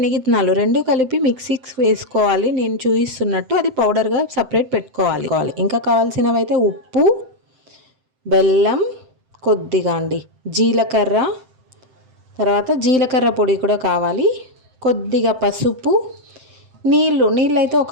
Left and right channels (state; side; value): late; left; 7.7 ms